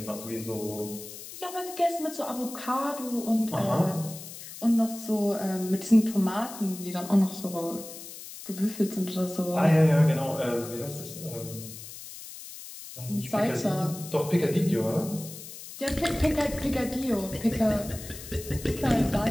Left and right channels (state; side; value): noise; left; hiss, 13 dB below the sound